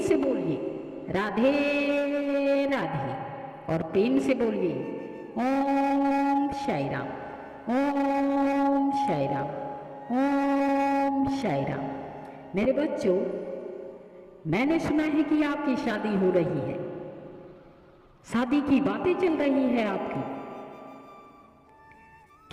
बोलिए राधे राधे और प्रेम से बोलिए ओम साई राम, ओम साई राम, ओम साई राम। मेरे बच्चों, मैंने सुना है कि आपकी शादी हो रही है। शादी की बातें चल रही है आपकी।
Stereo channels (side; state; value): both; identical; correlation 1.00